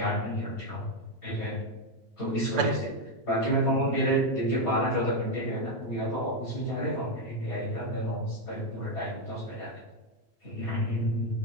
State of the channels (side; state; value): both; normal; correlation 0.05